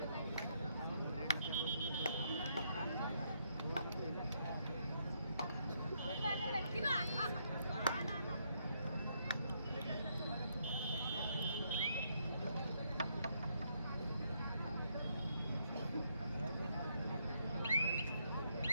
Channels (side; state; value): both; inverted; correlation -0.75